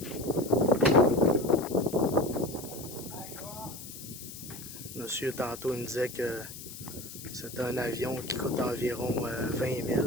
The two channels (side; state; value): left; noise; hiss, 12 dB below the sound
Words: Monsieur, tantôt, il me disait que c'est un avion qui coûte environ 20